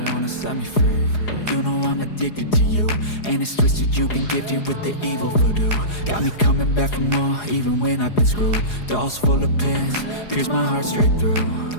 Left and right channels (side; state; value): right; late; 4.8 ms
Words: wanna set me free. You know I'm addicted to you, and it's twisted, you've been gifted with the evil voodoo. Got me coming back for more, even when I've been screwed. Dolls full of pins, pierce my heart straight through.